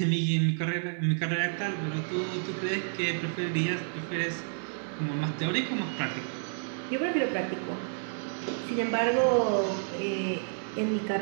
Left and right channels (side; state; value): left; silent; 58 dB below the other